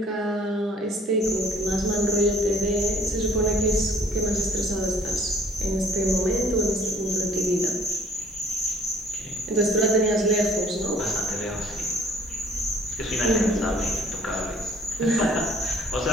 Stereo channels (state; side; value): normal; both; correlation 0.57